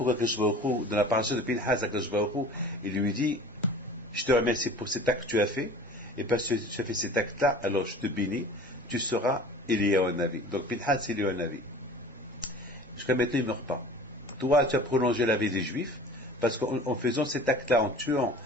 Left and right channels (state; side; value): normal; both; correlation 0.42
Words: Akadosh Baruch Hu, dans la paracha de Pinhas, Akadosh Baruch Hu, il lui dit, je te remercie pour cet acte que tu as fait, et parce que tu as fait cet acte-là, alors je te bénis, tu seras Eliyahu Navi. Donc Pinhas, c'est Eliyahu Navi. Jusqu'à maintenant, il ne meurt pas. Toi, tu as prolongé la vie des Juifs, parce qu'en faisant cet acte-là, en tuant